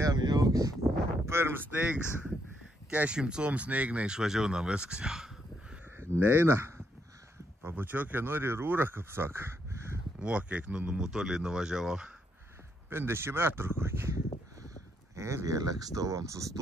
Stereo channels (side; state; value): both; normal; correlation 0.76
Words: jauks, pirms sneigs, 400 sneigna išvažiauna viskas jau. Neina, pabučiokė nori rūrą, kaip saka. O, kiek numutoliai nuvažiavau. 50 metrų kokį. Ir vėl ekstovam